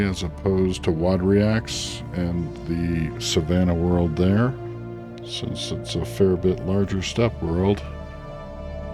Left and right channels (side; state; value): both; identical; correlation 1.00